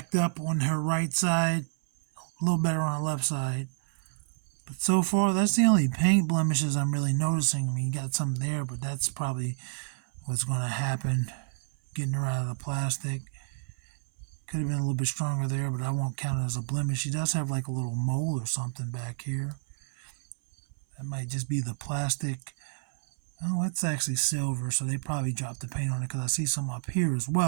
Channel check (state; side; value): silent; left; 59 dB below the other